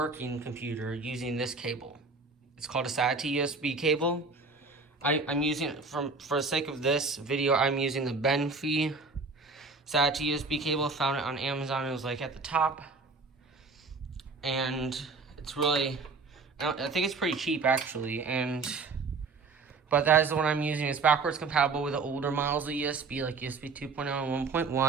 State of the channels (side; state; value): left; quieter; 4.1 dB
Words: computer using this cable. It's called a SATA USB cable. I'm using it for the sake of this video. I'm using the Benfee SATA USB cable. I found it on Amazon. It was like at the top, and it's really, I think it's pretty cheap actually. But that is the one I'm using. It's backwards compatible with the older models of USB, like USB 2.0 and